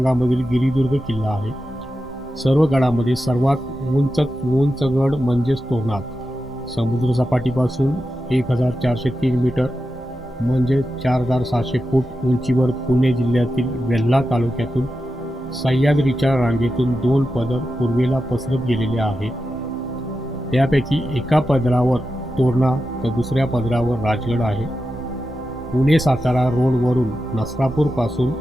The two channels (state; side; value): normal; both; correlation 0.90